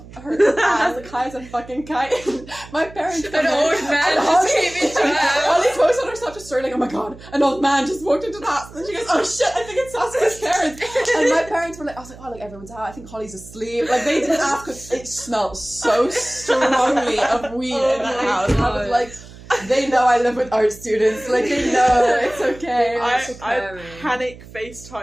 her ass, like high as a fucking kite. My parents An came in, old man and just came into her house. Holly posted on her Snapchat story like, "Oh my god, an old man just walked into the house," and she goes, "Oh shit, I think it's Saskia's parents." And my parents were like, I was like, "Oh, like everyone's out. I think Holly's asleep." Like they didn't ask because it smelled so strongly of weed in the house. And I was like, they know I live with art students. Like they know it's okay. I panic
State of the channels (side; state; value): right; noise; hum, 18 dB below the sound